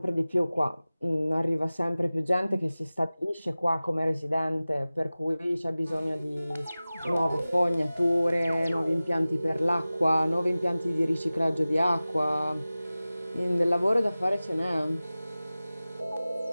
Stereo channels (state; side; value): inverted; both; correlation -0.97